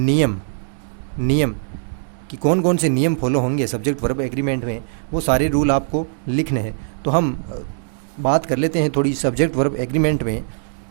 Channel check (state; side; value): silent; left; digital silence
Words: कि कौन कौन से नियम फॉलो होंगे सब्जेक्ट वर्ब एग्रीमेंट में, वो सारे रूल आपको लिखने हैं। तो हम बात कर लेते हैं थोड़ी सब्जेक्ट वर्ब एग्रीमेंट में